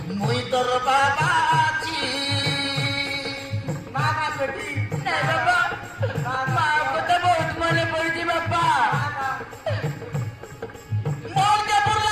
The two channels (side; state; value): both; identical; correlation 1.00